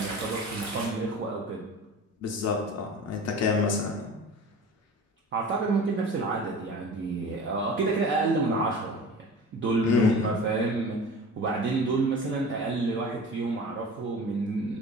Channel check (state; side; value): normal; both; correlation 0.37